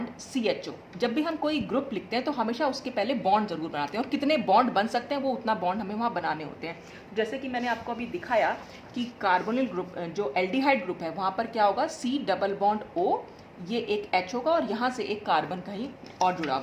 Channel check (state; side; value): identical; both; correlation 1.00